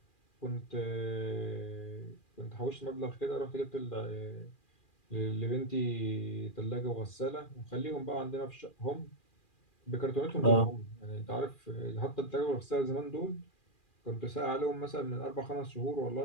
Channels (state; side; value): late; right; 2.4 ms